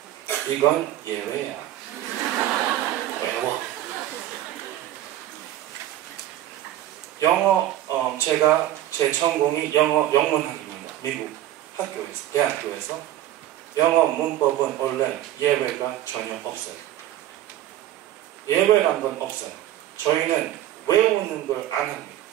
이건 예외야. 외워. 영어 제가 제 전공이 영어 영문학입니다. 미국 학교에서 대학교에서 영어 문법은 원래 예외가 전혀 없어요. 예외란 건 없어요. 저희는 외우는 걸 안 합니다.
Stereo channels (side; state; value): left; quieter; 13.2 dB